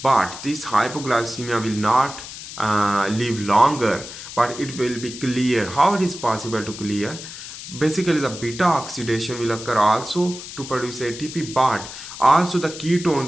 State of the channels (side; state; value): left; noise; hiss, 12 dB below the sound